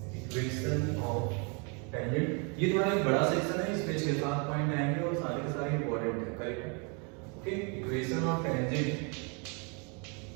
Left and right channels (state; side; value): quieter; left; 34.7 dB